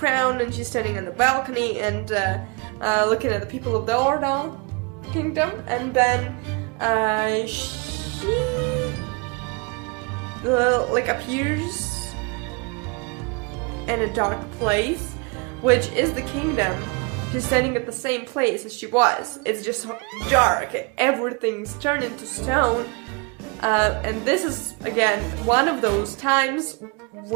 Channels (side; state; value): left; quieter; 30.7 dB